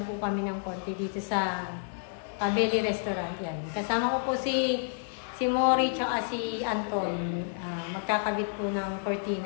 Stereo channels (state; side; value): silent; right; digital silence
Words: po kami ng konti dito sa Cabelli Restaurant. Yan, kasama ko po si Mori tsaka si Anton. Magkakabit po ng